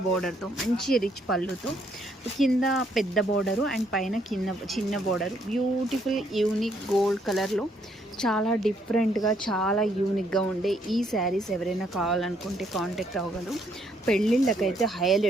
బోర్డర్తో మంచి రిచ్ పళ్ళుతో కింద పెద్ద బోర్డరు అండ్ పైన చిన్న బోర్డరు బ్యూటిఫుల్ యూనిక్ గోల్డ్ కలర్లో చాలా డిఫరెంట్గా చాలా యూనిక్గా ఉండే ఈ శారీస్ ఎవరైనా కావాలనుకుంటే కాంటాక్ట్ అవ్వగలరు. పెళ్ళిళ్ళకైతే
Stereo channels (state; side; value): normal; both; correlation 0.70